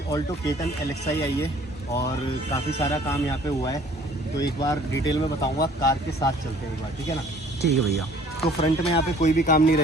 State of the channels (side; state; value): both; normal; correlation 0.55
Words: ऑल्टो K10 LXi आई है और काफ़ी सारा काम यहाँ पे हुआ है, तो एक बार डिटेल में बताऊंगा। कार के साथ चलते हैं एक बार, ठीक है ना? ठीक है भैया। तो फ्रंट में यहाँ पे कोई भी काम नहीं